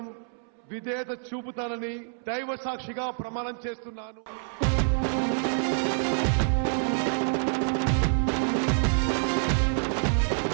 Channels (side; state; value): left; silent; 60 dB below the other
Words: విధేయత చూపుతానని దైవ సాక్షిగా ప్రమాణం చేస్తున్నాను.